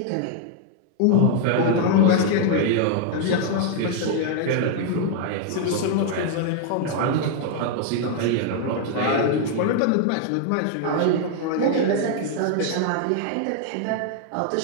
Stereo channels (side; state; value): both; different; correlation 0.00